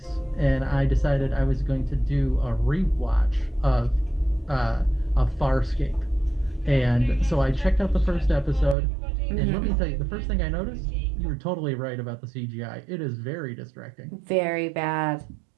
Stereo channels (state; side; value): drops out; left; at 8.8 s